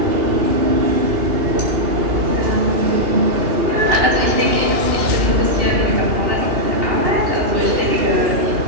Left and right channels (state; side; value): late; left; 2.8 ms